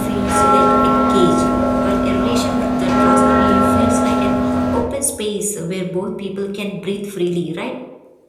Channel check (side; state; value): both; identical; correlation 1.00